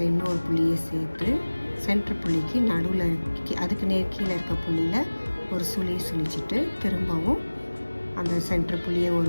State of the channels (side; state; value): both; inverted; correlation -1.00